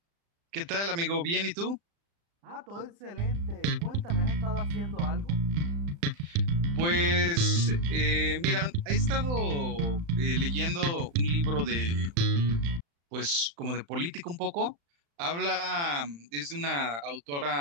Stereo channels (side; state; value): left; late; 35 ms